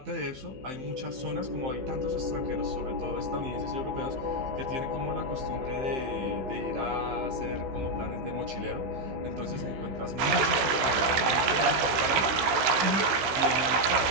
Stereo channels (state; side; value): late; left; 16 ms